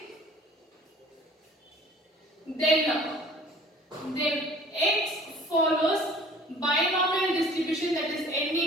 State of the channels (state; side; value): normal; both; correlation 0.50